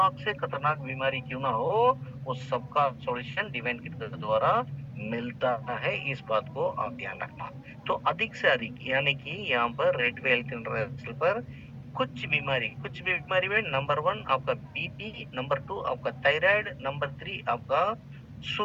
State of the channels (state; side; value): identical; both; correlation 1.00